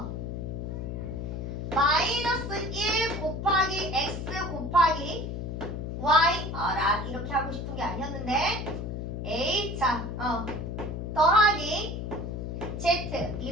마이너스 1 곱하기 x 곱하기 y 이렇게 하고 싶은 게 아니었는데 a 더하기 z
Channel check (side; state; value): left; noise; hum, 5 dB below the sound